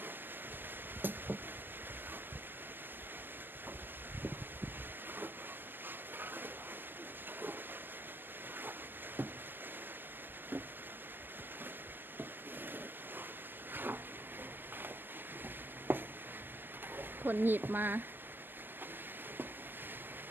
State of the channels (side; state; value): left; late; 0.092 ms